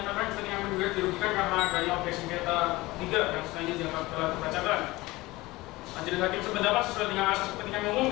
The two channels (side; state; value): right; quieter; 20.2 dB